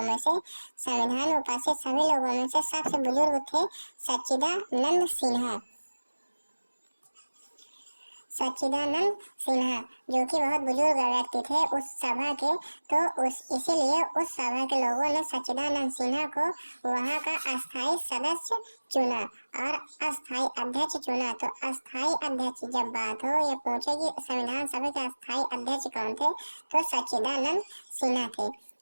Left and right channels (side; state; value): both; inverted; correlation -1.00